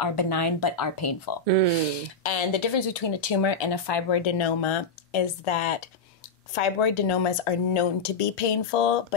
benign but are painful. And the difference between a tumor and a fibroadenoma is that fibroadenomas are known to be painful,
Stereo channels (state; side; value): quieter; right; 3.7 dB